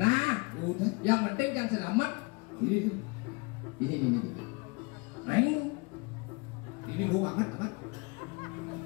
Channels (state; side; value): quieter; right; 29.4 dB